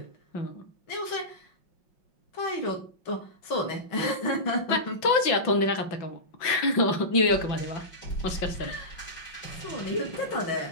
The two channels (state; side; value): late; right; 5.5 ms